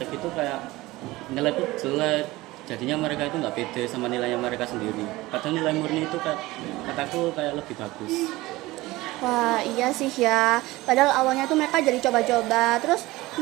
itu kayak nilai itu jelek, jadinya mereka itu nggak pede sama nilainya mereka sendiri, padahal nilai murni itu kataku kayak lebih bagus. Wah, iya sih ya. Padahal awalnya tuh mereka jadi coba-coba, terus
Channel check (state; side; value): quieter; left; 19.4 dB